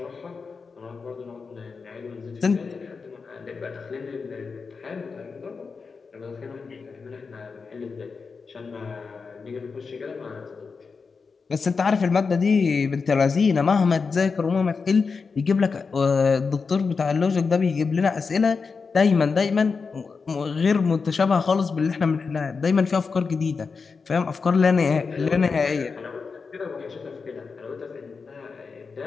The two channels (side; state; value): right; quieter; 5.0 dB